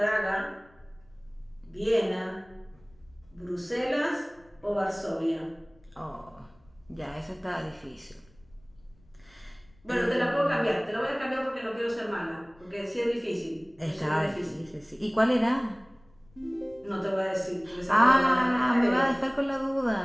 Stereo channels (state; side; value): noise; left; rumble, 29 dB below the sound